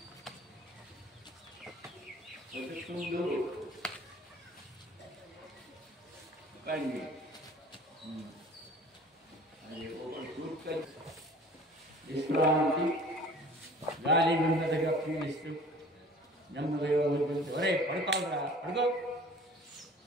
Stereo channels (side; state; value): both; normal; correlation 0.47